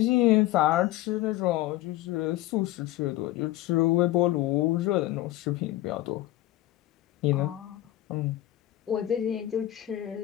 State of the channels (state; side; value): quieter; right; 15.3 dB